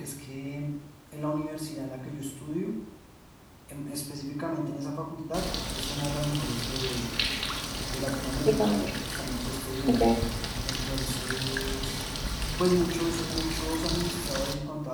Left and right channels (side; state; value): both; identical; correlation 1.00